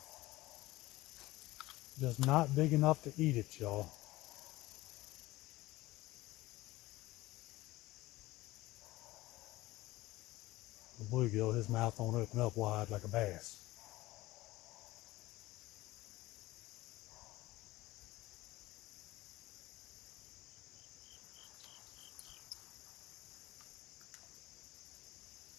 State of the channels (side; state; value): right; quieter; 18.5 dB